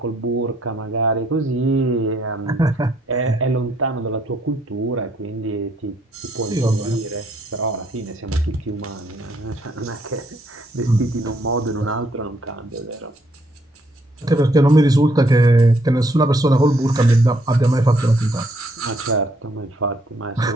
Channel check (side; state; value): both; normal; correlation 0.70